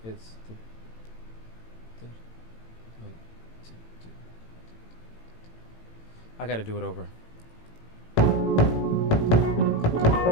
It's I gotta do it over.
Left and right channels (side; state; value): right; late; 18 ms